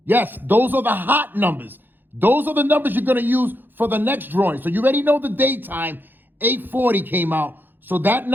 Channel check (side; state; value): left; late; 0.093 ms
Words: Yes, those are the hot numbers. Those are the numbers you're going to use for the next drawing. So you already know the daytime, 840 came out. So that